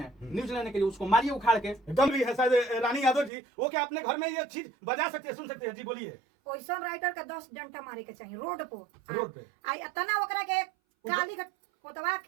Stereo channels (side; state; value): left; drops out; at 3.3 s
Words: न्यूज लेने के लिए, उसको मारिए उखाड़ के। एकदम भी है शायद रानी यादव जी, वो क्या अपने घर में ये चीज बजा सकते हैं, सुन सकते हैं? जी बोलिए। ओइसन राइटर के 10 डंडा मारे के चाहिए रोड पे। रोड पे आई इतना ओकरा के काली कोतवा